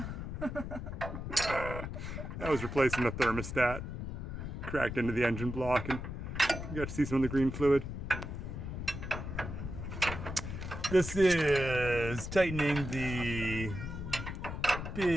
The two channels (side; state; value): left; noise; rumble, 6 dB below the sound